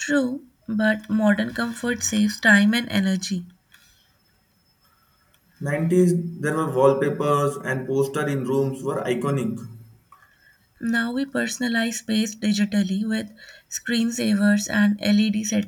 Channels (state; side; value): identical; both; correlation 1.00